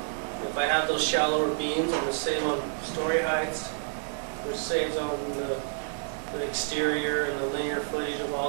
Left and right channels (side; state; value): left; silent; digital silence